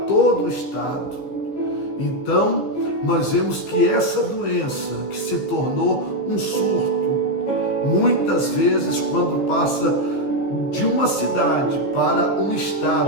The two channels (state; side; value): late; right; 15 ms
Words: todo o estado. Então, nós vemos que essa doença que se tornou um surto, muitas vezes quando passa de uma cidade para um